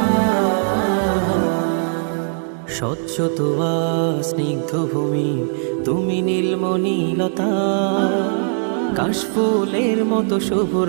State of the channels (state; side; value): silent; left; digital silence